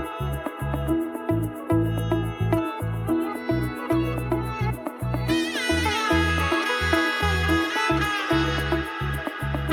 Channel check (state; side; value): identical; both; correlation 1.00